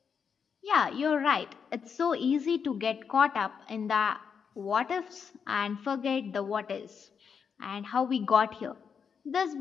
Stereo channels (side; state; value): right; quieter; 6.5 dB